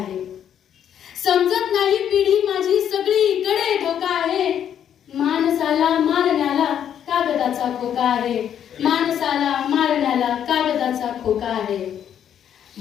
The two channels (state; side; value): quieter; right; 9.4 dB